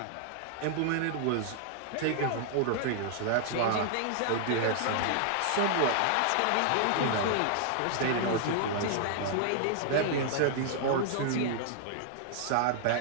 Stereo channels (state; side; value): different; both; correlation -0.01